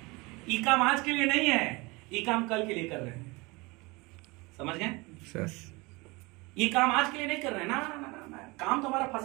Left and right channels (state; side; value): quieter; left; 25.0 dB